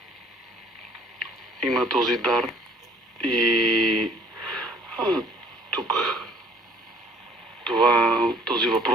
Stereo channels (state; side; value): normal; both; correlation 0.56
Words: има този дар и тук този